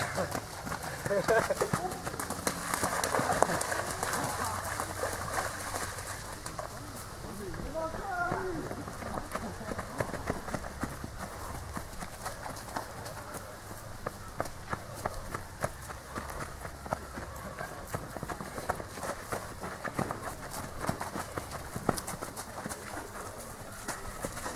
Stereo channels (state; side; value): identical; both; correlation 1.00